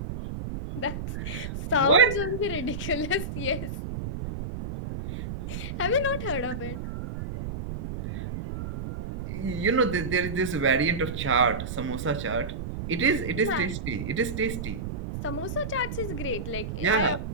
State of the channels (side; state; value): right; noise; rumble, 6 dB below the sound